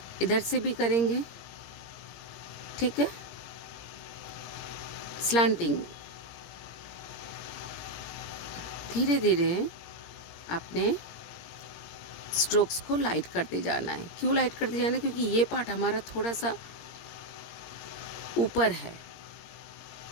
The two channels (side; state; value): right; late; 17 ms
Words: इधर से भी करेंगे, ठीक है, स्लांटिंग। धीरे धीरे आपने स्ट्रोक्स को लाइट करते जाना है। क्यों लाइट करते जाना है? क्योंकि ये पार्ट हमारा थोड़ा सा ऊपर है,